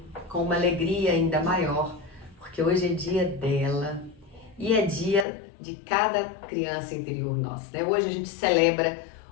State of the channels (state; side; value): drops out; right; at 5.2 s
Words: com uma alegria ainda maior, porque hoje é dia dela e é dia de cada criança interior nossa, né? Hoje a gente celebra